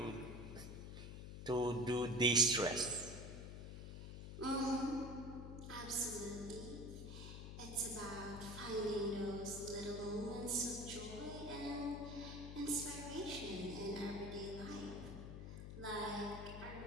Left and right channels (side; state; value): left; noise; hum, 8 dB below the sound